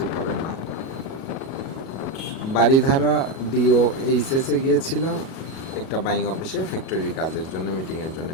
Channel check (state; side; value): late; right; 37 ms